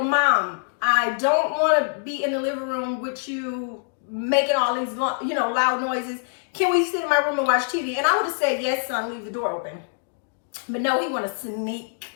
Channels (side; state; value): right; silent; digital silence